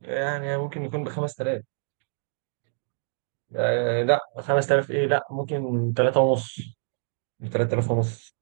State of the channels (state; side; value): silent; left; digital silence